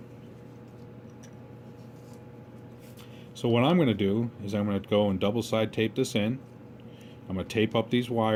So what I'm going to do is I'm going to go and double side tape this in. I'm going to tape up these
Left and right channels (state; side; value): identical; both; correlation 1.00